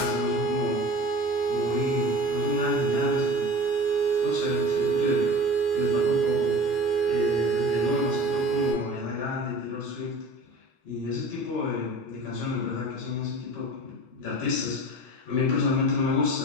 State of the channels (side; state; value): both; normal; correlation 0.38